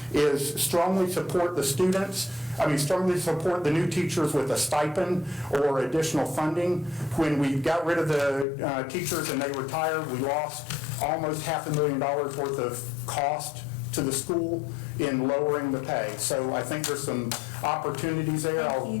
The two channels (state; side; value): drops out; right; at 8.5 s